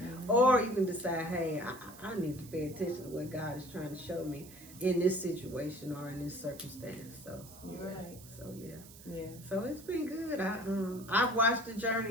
Or you can decide, hey, I need to pay attention to what God is trying to show me in this situation or in this circumstance. So you're right. So yeah. So it's been good. I've watched the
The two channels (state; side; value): noise; right; hiss, 19 dB below the sound